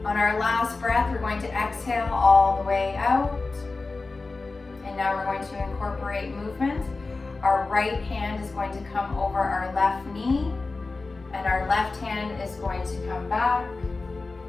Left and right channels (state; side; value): quieter; right; 3.7 dB